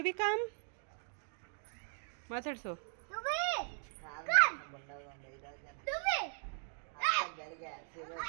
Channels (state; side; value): silent; left; 52 dB below the other